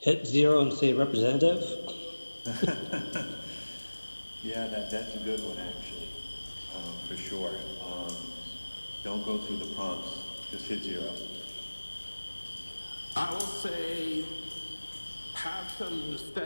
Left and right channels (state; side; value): inverted; both; correlation -1.00